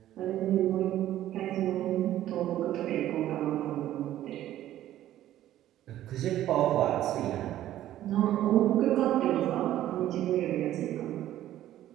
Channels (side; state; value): left; quieter; 13.0 dB